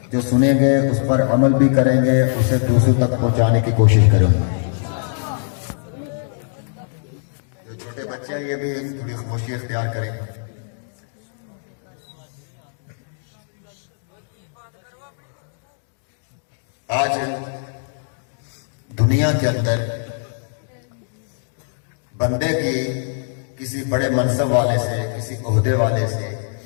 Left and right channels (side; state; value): right; silent; digital silence